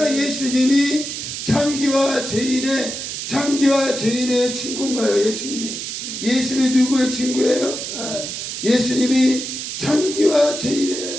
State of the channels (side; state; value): right; noise; hiss, 6 dB below the sound